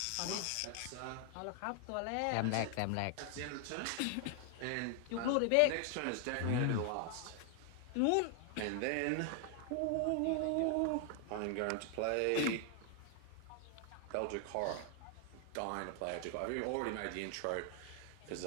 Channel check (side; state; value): both; different; correlation 0.00